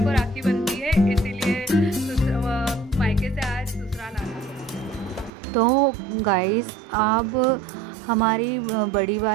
राखी बनती है, इसीलिए मायके से आज ससुराल आना। तो गाइस, अब हमारी बड़ी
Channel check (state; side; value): drops out; left; at 5.3 s